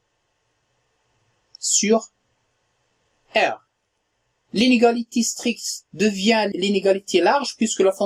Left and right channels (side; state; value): both; identical; correlation 1.00